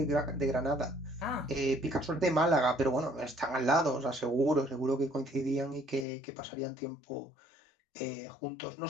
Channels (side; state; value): right; drops out; at 6.1 s